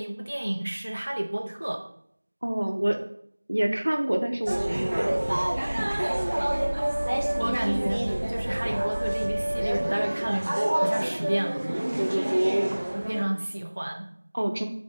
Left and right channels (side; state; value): both; inverted; correlation -1.00